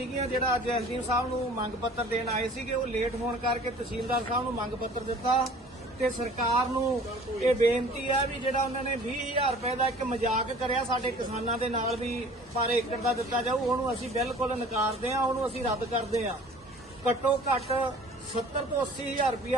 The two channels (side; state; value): both; normal; correlation 0.48